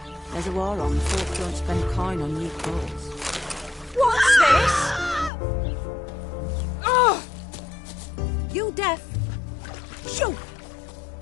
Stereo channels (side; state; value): right; drops out; at 5.3 s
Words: There's a war on. Folk don't spend coin on new clothes. What's this? Oh! You deaf? Shoo!